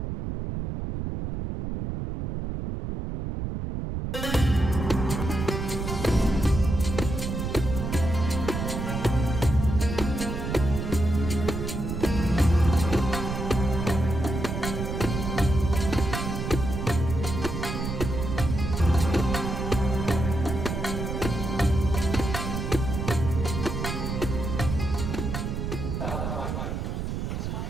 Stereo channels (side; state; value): right; noise; rumble, 3 dB below the sound